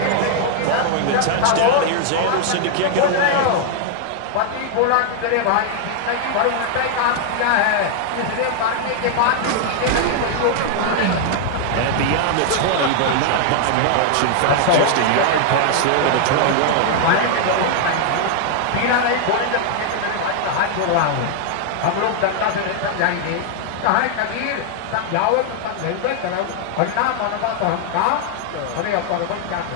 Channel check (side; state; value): both; different; correlation 0.00